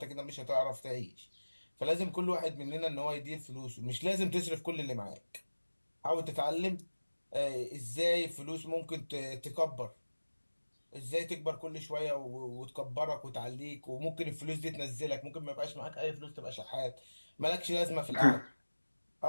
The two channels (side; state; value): both; inverted; correlation -1.00